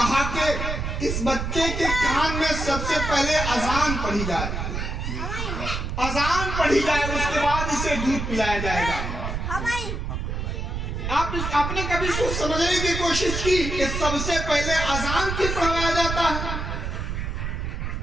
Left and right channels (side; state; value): right; noise; rumble, 3 dB below the sound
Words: कि इस बच्चे के कान में सबसे पहले अजान पढ़ी जाए, अजान पढ़ी जाए, उसके बाद इसे दूध पिलाया जाएगा। आपने कभी सोच समझने की कोशिश की कि सबसे पहले अजान क्यों पढ़ाया जाता है?